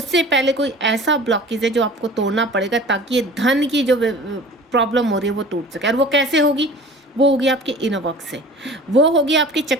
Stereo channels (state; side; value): normal; both; correlation 0.43